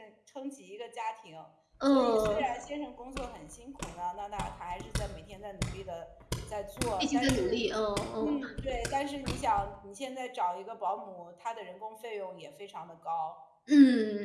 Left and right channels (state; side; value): identical; both; correlation 1.00